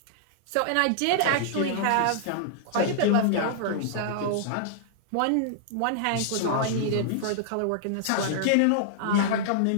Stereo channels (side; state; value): both; different; correlation -0.01